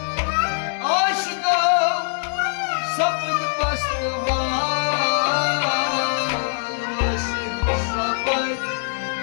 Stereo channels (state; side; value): silent; right; digital silence